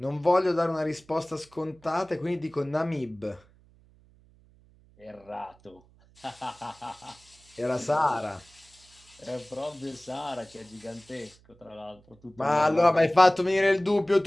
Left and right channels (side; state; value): right; noise; hum, 29 dB below the sound